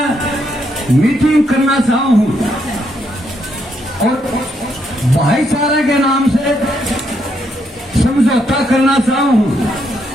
मीटिंग करना चाहता हूं और भाईचारे के नाम से समझौता करना चाहता हूं।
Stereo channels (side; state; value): both; normal; correlation 0.76